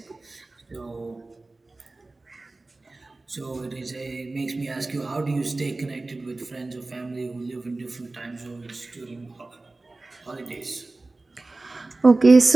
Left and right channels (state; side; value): quieter; left; 3.2 dB